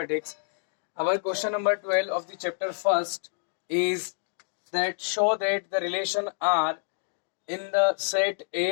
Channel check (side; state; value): right; silent; digital silence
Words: Our question number 12 of the chapter first is that show that the relation R in the set